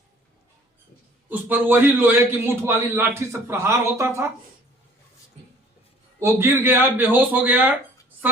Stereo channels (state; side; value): normal; both; correlation 0.53